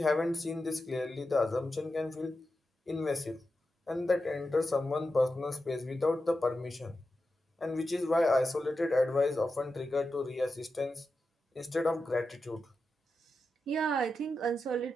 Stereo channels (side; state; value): both; normal; correlation 0.90